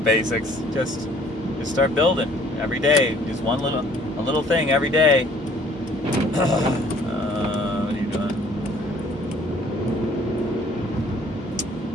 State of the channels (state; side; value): normal; both; correlation 0.57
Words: basics. Just start building every day. Just a little thing every day. What are you doing?